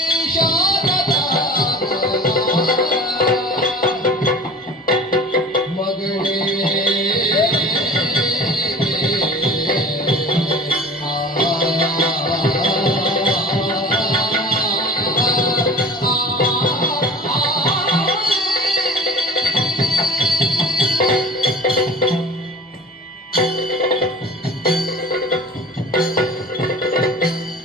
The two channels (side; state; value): both; normal; correlation 0.40